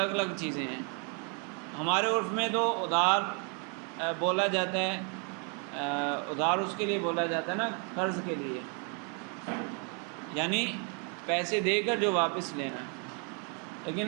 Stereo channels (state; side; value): quieter; left; 37.6 dB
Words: الگ چیزیں ہیں۔ ہمارے عرف میں تو ادھار بولا جاتا ہے، ادھار اس کے لیے بولا جاتا ہے نا، قرض کے لیے، یعنی پیسے دے کر جو واپس لینا۔ لیکن